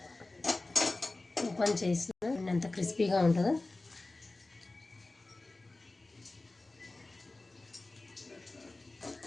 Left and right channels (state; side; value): quieter; right; 3.1 dB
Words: ఓపెన్ చేసిన ఎంత క్రిస్పీగా ఉంటుందో.